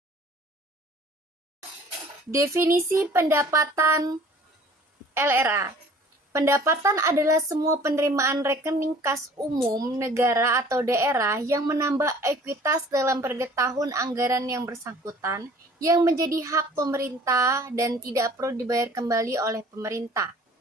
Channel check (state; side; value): normal; both; correlation 0.50